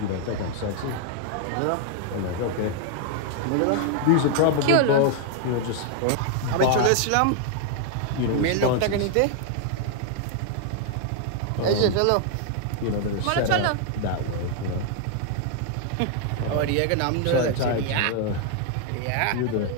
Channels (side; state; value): both; different; correlation 0.00